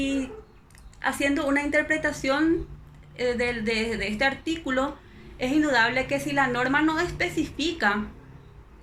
haciendo una interpretación de este artículo, es indudable que si la norma no especifica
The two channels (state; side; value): identical; both; correlation 1.00